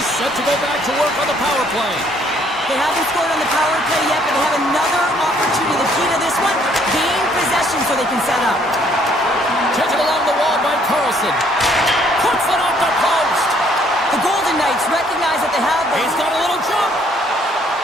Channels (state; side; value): normal; both; correlation 0.64